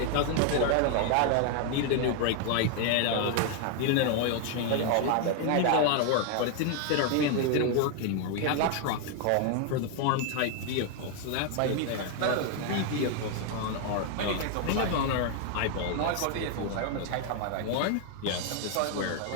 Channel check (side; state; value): both; different; correlation 0.00